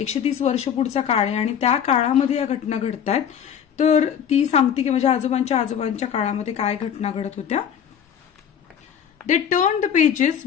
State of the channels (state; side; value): quieter; right; 8.5 dB